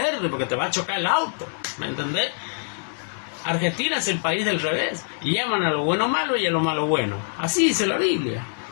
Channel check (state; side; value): silent; right; digital silence